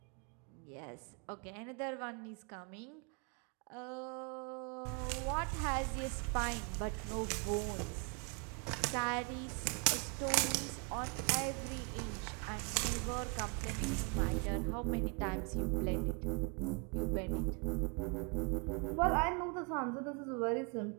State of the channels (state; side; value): quieter; left; 33.0 dB